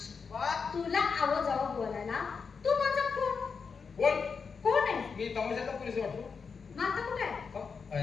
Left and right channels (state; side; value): quieter; right; 5.5 dB